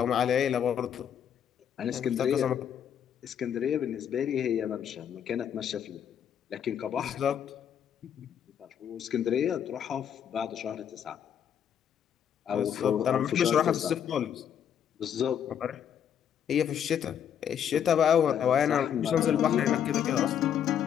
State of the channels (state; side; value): quieter; right; 8.9 dB